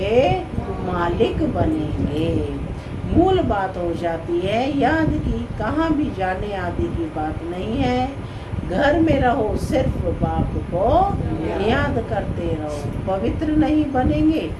मालिक बनेंगे। मूल बात हो जाती है याद की, कहाँ भी जाने आदि की बात नहीं है। घर में रहो, सिर्फ बाप को याद करते रहो। पवित्र नहीं बनेंगे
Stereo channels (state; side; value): identical; both; correlation 1.00